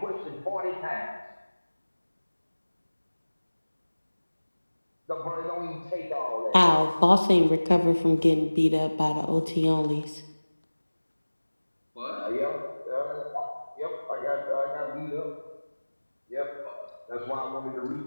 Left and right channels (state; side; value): inverted; both; correlation -1.00